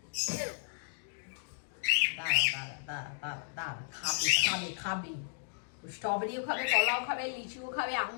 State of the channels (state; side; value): silent; right; digital silence